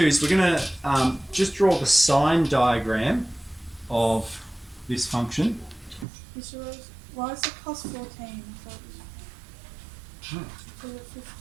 is we're going to just draw the sign diagram of this function. Mr. Rose, why is it plus 14? So it was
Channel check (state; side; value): drops out; left; at 6.1 s